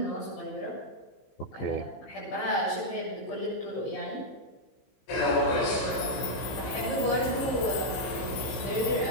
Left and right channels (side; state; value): right; late; 16 ms